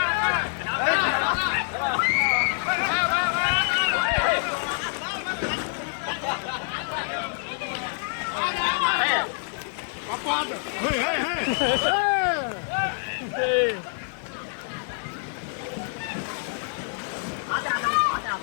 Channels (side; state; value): right; silent; digital silence